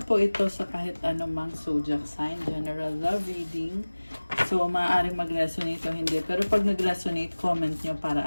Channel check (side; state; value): both; inverted; correlation -1.00